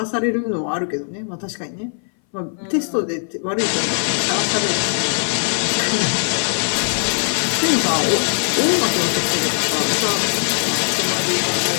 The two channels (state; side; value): silent; right; 60 dB below the other